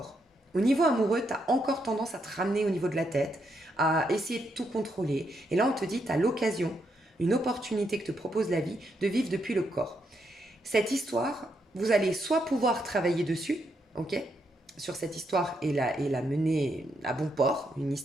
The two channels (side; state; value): both; normal; correlation 0.79